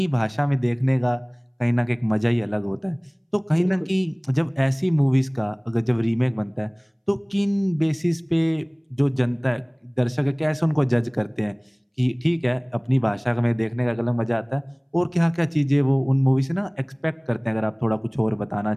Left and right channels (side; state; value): both; identical; correlation 1.00